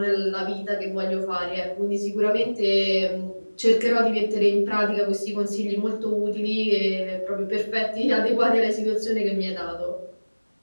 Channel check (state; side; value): inverted; both; correlation -1.00